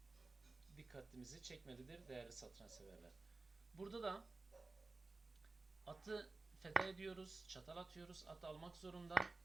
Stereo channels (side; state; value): left; quieter; 3.5 dB